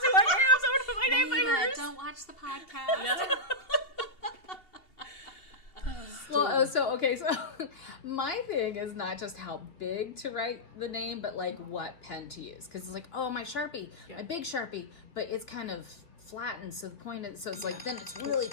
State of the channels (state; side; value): late; right; 2.9 ms